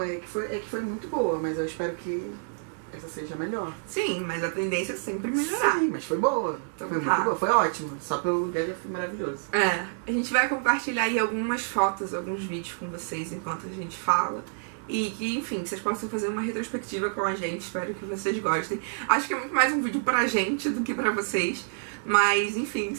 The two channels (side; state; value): left; silent; 59 dB below the other